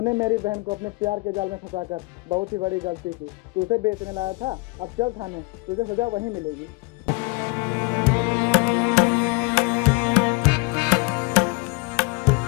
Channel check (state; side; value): quieter; right; 27.0 dB